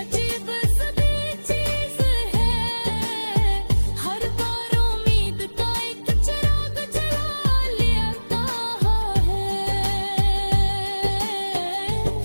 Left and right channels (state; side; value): inverted; both; correlation -1.00